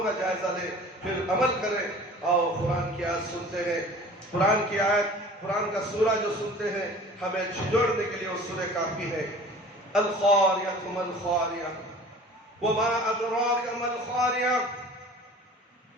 کا جائزہ لیں، پھر عمل کریں۔ آؤ قرآن کی آیت سنتے ہیں، قرآن کی آیت، قرآن کا سورہ جو سنتے ہیں ہمیں جھنجھوڑنے کے لیے وہ سورہ کافی ہے۔ القاریۃ ما القاریۃ وما ادراک ما القاریۃ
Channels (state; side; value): normal; both; correlation 0.44